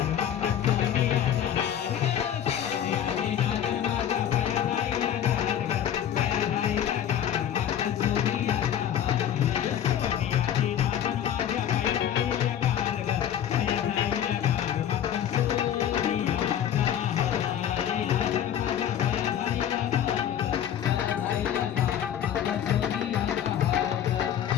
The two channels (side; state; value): right; quieter; 10.0 dB